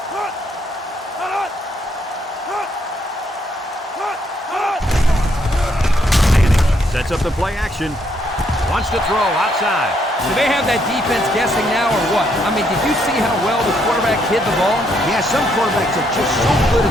Manning sets up the play action. Wants to throw outside. Do they have that defense guessing now or what? I mean, did you see how well the quarterback hid the ball? Yeah, some quarterbacks are just so good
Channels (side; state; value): both; normal; correlation 0.73